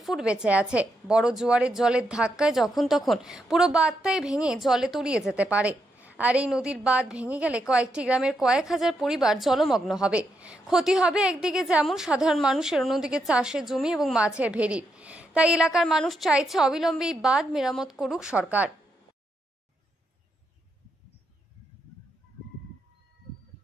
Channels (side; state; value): both; normal; correlation 0.81